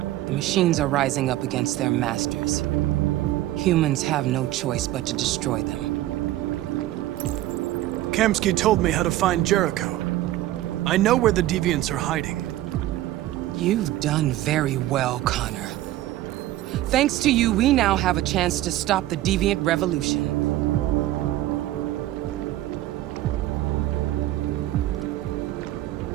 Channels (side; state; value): left; quieter; 15.0 dB